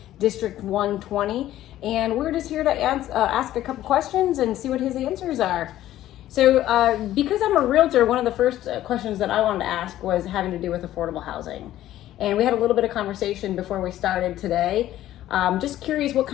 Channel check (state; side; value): quieter; right; 13.6 dB